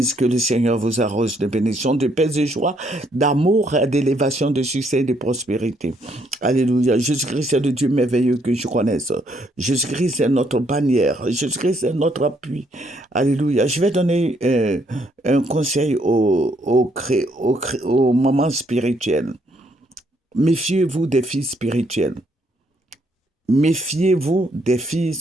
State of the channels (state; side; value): normal; both; correlation 0.71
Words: que le Seigneur vous arrose de bénédictions, de paix et joie, d'amour, d'élévation, de succès et de prospérité. Alléluia. Jésus-Christ est le Dieu merveilleux que je connaisse. Jésus-Christ est notre bannière. Jésus-Christ est notre appui. Alléluia. Je vais donner un conseil aux mamans spirituelles. Méfiez-vous des filles spirituelles. Méfiez-vous des filles